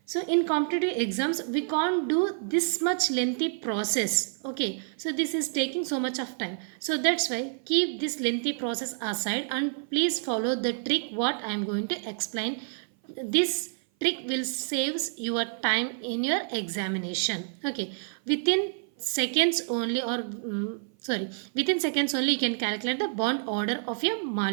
so in competitive exams, we can't do this much lengthy process. Okay, so this is taking so much of time. So that's why keep this lengthy process aside and please follow the trick what I am going to explain. This trick will saves your time in your examination. Okay, within seconds only or sorry, within seconds only you can calculate the bond order of your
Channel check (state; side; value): silent; left; 55 dB below the other